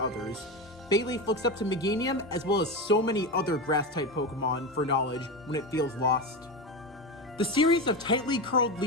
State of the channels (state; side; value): normal; both; correlation 0.19